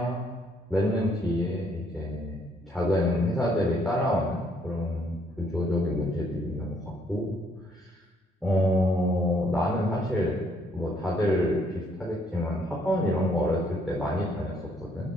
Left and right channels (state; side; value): normal; both; correlation 0.67